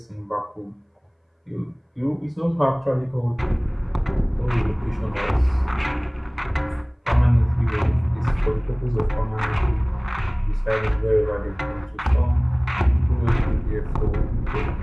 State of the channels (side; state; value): both; identical; correlation 1.00